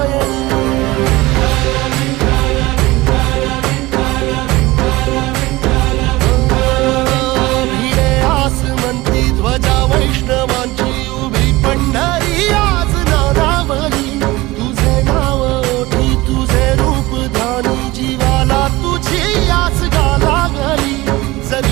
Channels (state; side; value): quieter; left; 20.1 dB